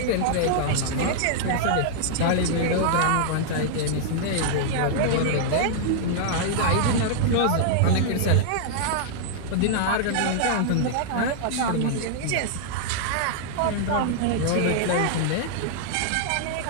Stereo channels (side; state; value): both; different; correlation -0.01